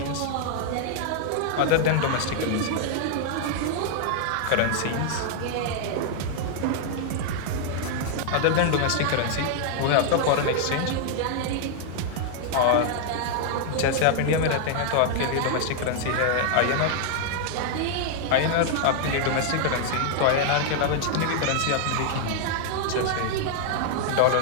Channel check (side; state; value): both; different; correlation 0.00